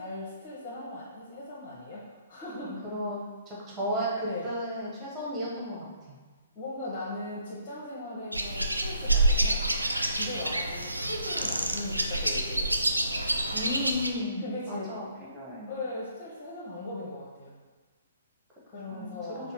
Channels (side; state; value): both; inverted; correlation -0.67